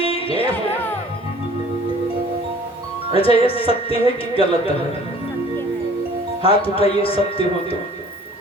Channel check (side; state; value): both; normal; correlation 0.51